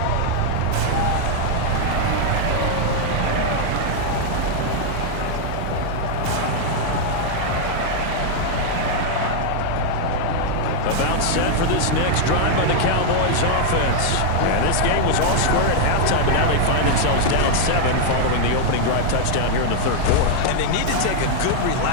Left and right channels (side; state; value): both; different; correlation 0.00